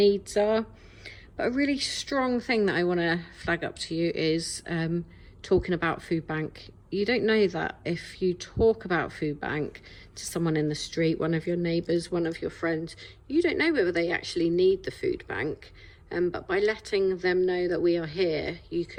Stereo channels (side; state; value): both; identical; correlation 1.00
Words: are. But a really strong thing that I want to flag up to you is talking about food bank. You don't know that if you talk about food bank to someone in the street, one of your neighbours, one of your friends, you don't know whether they actually need the food bank. But by letting them know that we are here, you